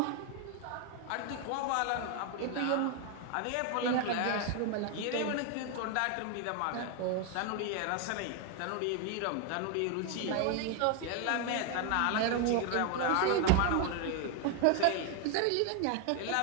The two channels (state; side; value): different; both; correlation 0.01